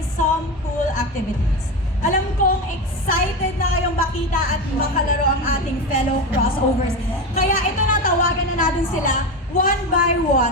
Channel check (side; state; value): both; normal; correlation 0.19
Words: cool activities. Alam kong excited na kayong makita at makalaro ang ating fellow crossovers. Kaya ito na, tawagan na natin sila one by